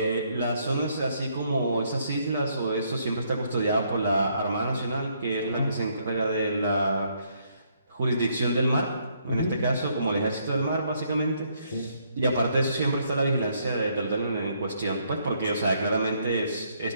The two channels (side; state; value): both; inverted; correlation -0.71